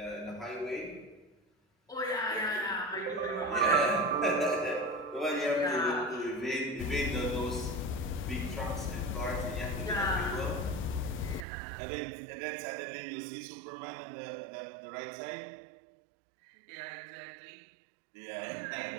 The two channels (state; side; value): drops out; left; at 11.5 s